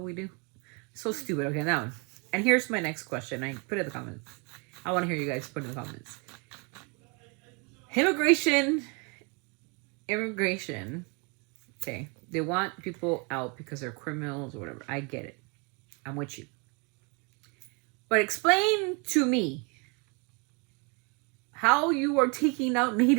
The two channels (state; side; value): quieter; left; 32.5 dB